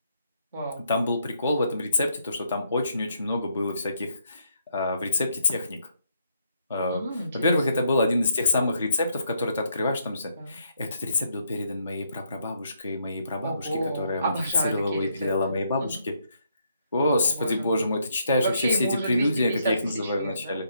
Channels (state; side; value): inverted; both; correlation -0.74